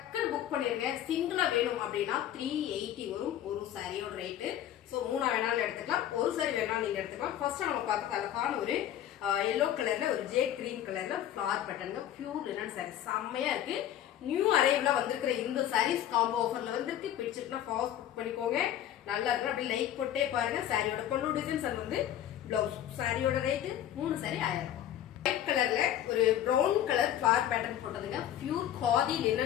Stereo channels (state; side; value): quieter; right; 11.3 dB